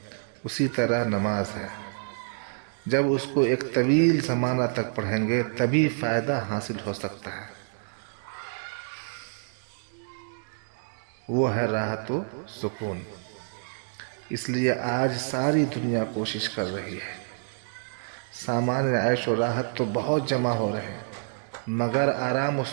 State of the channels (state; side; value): silent; left; digital silence